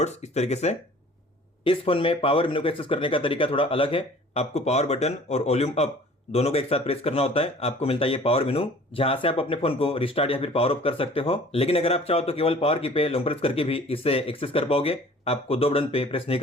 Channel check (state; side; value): normal; both; correlation 0.49